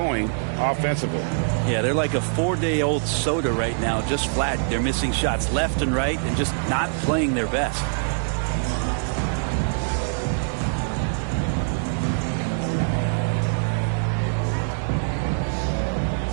offensively. Yeah, they're like a 4-day-old soda right now, just flat. They're missing shots left and right and just not playing their best.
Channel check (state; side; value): silent; left; digital silence